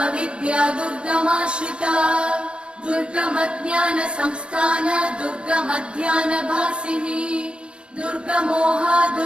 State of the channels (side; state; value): left; late; 0.057 ms